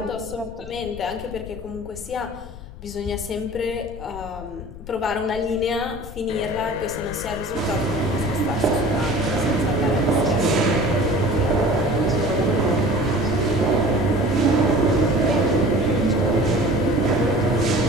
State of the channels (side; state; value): left; noise; rumble, 14 dB below the sound